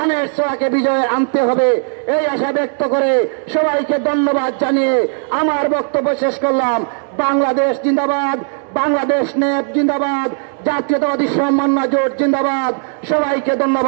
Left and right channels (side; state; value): left; silent; 59 dB below the other